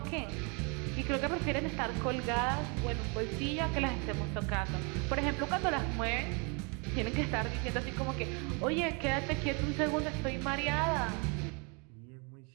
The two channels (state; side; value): quieter; left; 32.9 dB